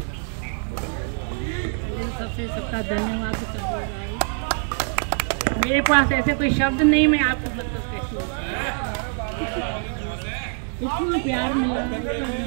सबका धन्यवाद। मेरे पास ऐसे कोई शब्द नहीं, मैं आपको इतना प्यार मिला,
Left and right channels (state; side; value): silent; left; 55 dB below the other